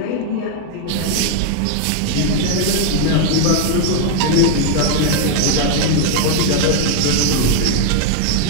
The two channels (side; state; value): both; different; correlation 0.00